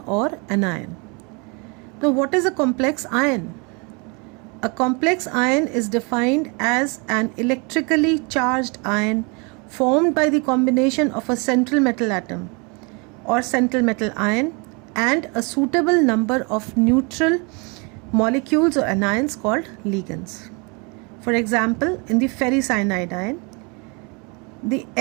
or anion. Now, what is a complex ion? A complex ion is defined as an electrically charged ion formed by the combination of a central metal atom or central metal ion and a suitable number of neutral molecules or anions called ligands. For example, in the ferricyanide ion, the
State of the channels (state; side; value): quieter; left; 31.5 dB